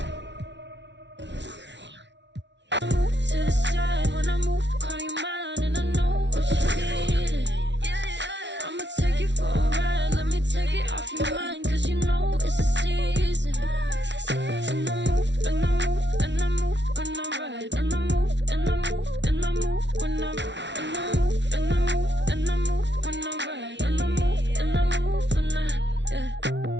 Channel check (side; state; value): left; late; 0.51 ms